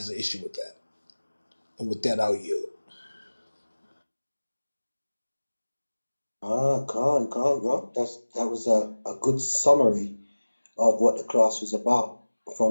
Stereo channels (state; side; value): inverted; both; correlation -1.00